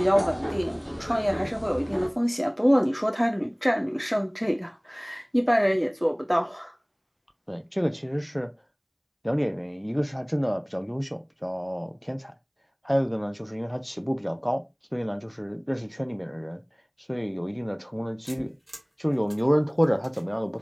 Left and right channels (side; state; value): both; identical; correlation 1.00